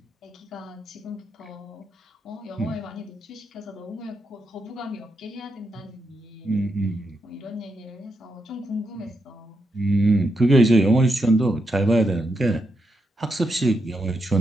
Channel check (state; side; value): normal; both; correlation 0.84